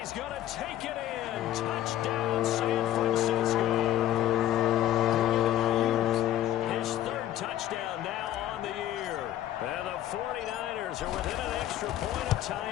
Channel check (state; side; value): quieter; right; 12.8 dB